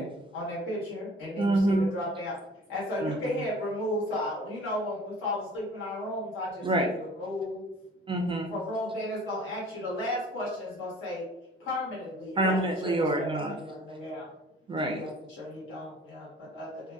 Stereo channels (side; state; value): both; normal; correlation 0.48